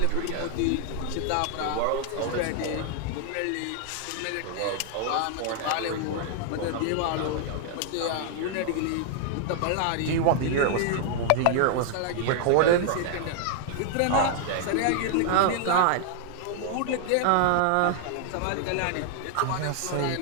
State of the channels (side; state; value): both; different; correlation 0.00